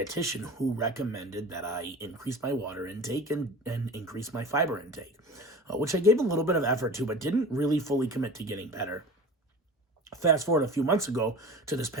who recommended that I increase my water intake and increase my fiber intake, which I gave a little bit of effort to, but didn't really fully commit to getting better. Fast forward a few months ago to this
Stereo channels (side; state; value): both; normal; correlation 0.36